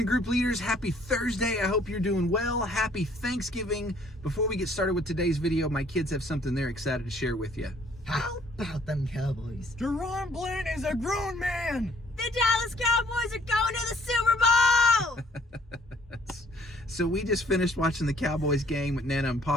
Group leaders. Happy Thursday. I hope you're doing well. Happy Thanksgiving. Before we get started with today's video, my kids have something they're excited to share with you. How about them Cowboys? Deron Bland is a grown man. The Dallas Cowboys are going to the Super Bowl! So we just finished watching the Cowboys game at Nana and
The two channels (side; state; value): both; normal; correlation 0.61